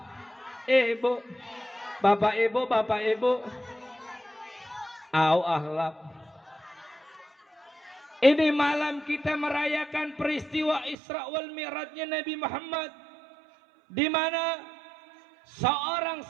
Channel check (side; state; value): left; drops out; at 11.0 s